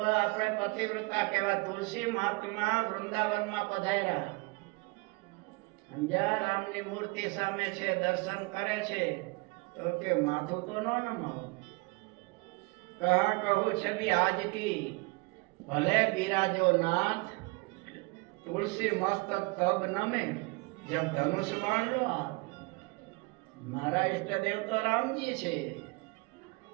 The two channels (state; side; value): quieter; left; 27.4 dB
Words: આપણે પતિવ્રતા કહેવા. તુલસી મહાત્મા વૃંદાવનમાં પધાર્યા, અંજા રામની મૂર્તિ સામે છે, દર્શન કરે છે તો કે માથું તો ન નમાવો. કહા કહું છબી આજ કી ભલે બિરાજો નાથ, તુલસી મસ્તક તબ નમે જબ ધનુષ બાણ લો આપ. મારા ઈષ્ટદેવ તો રામજી છે,